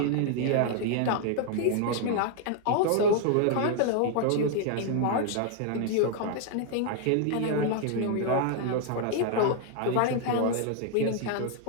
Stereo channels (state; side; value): different; both; correlation 0.00